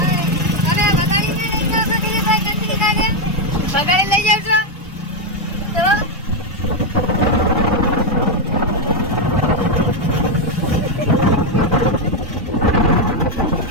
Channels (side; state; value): both; normal; correlation 0.04